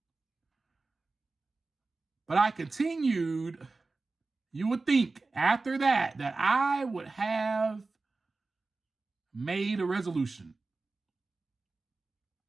But I continued. You would think after that I would have made a resolution.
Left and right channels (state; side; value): quieter; left; 3.7 dB